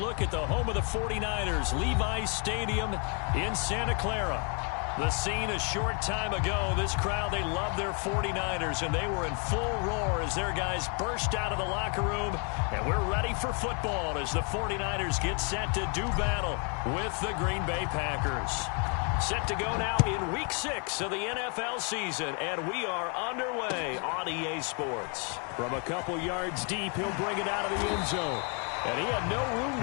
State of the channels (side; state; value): right; quieter; 37.4 dB